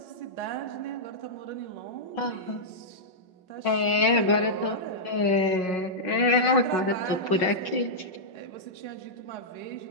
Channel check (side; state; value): right; late; 5.5 ms